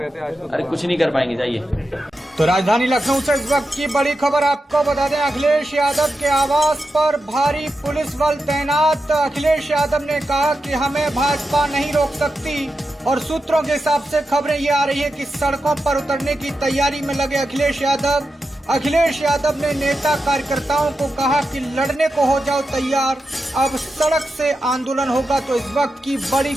थे आज तो। अरे कुछ नहीं कर पाएंगे, जाइए। तो राजधानी लखनऊ से इस वक्त की बड़ी खबर आपको बता दें, अखिलेश यादव के आवास पर भारी पुलिस बल तैनात। अखिलेश यादव ने कहा कि हमें भाजपा नहीं रोक सकती और सूत्रों के हिसाब से खबरें ये आ रही है कि सड़कों पर उतरने की तैयारी में लगे अखिलेश यादव ने नेता कार्यकर्ताओं को कहा कि लड़ने को हो जाओ तैयार, अब सड़क से आंदोलन होगा। तो इस वक्त की बड़ी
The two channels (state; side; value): normal; both; correlation 0.89